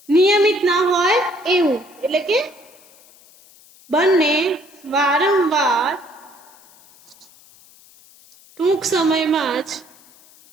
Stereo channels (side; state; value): left; noise; hiss, 26 dB below the sound